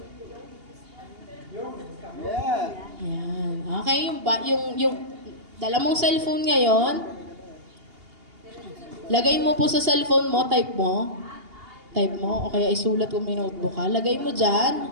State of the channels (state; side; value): late; left; 2.8 ms